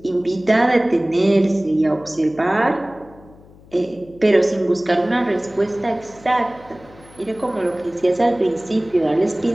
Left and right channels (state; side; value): noise; left; hum, 24 dB below the sound